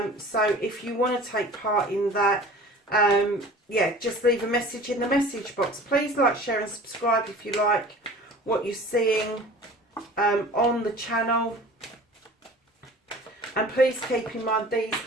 So if you want to take part in that, yeah, just leave a message in the message box. Please like, share and subscribe if you like what you're seeing on the channel. And please keep in mind, these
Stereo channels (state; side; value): normal; both; correlation 0.43